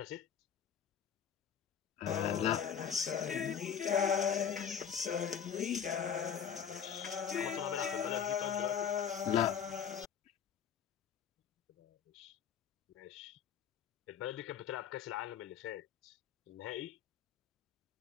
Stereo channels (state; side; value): quieter; right; 8.0 dB